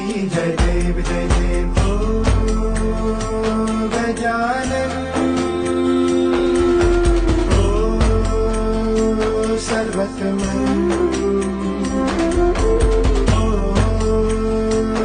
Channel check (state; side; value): identical; both; correlation 1.00